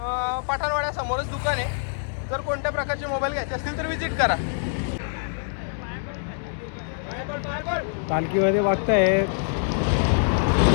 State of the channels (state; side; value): silent; right; digital silence